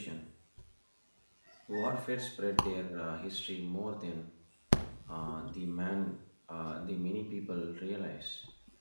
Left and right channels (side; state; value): both; inverted; correlation -1.00